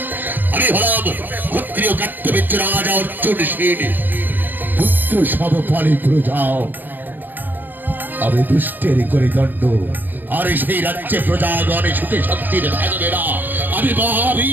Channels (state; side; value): late; left; 0.088 ms